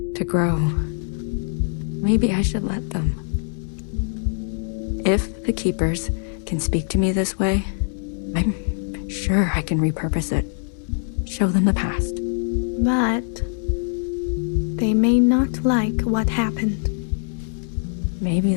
to grow. Maybe I should let them. If the Keepers can speak to me this way, I'm sure I can repurpose it. Show them the past. But they may not like what happened. Maybe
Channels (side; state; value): right; silent; digital silence